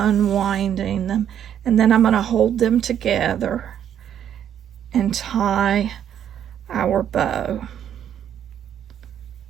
them. And then I'm going to hold them together and tie our bow.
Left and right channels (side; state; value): left; quieter; 9.6 dB